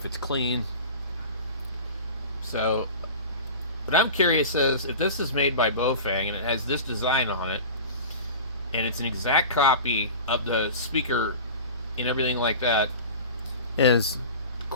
it's clean. So what I'm curious is if this is made by baofeng and it has this design on it, and it's an exact copy of the speaker and everything like that, is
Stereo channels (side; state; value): both; inverted; correlation -0.34